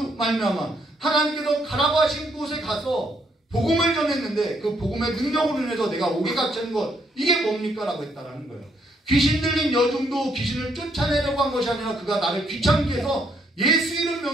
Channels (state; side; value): normal; both; correlation 0.72